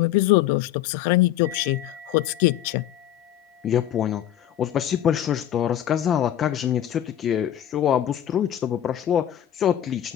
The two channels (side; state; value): right; quieter; 11.4 dB